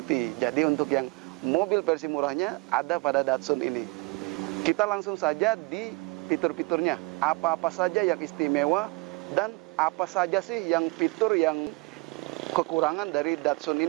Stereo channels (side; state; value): left; quieter; 26.4 dB